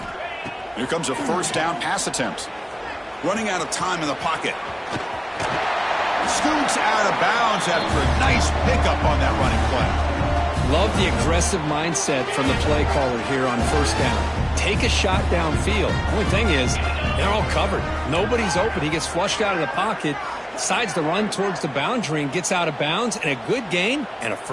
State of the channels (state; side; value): identical; both; correlation 1.00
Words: Here comes a first down pass attempt. Running out of time in the pocket. Scoots out of bounds after a nice pickup on that running play. Love the aggressive mindset from the play caller here on first down. Take a shot downfield. Only thing is, they're all covered. Nobody's open. He gets flushed out of the pocket, decides to run towards the boundary and gets out of bounds, and a good gain and a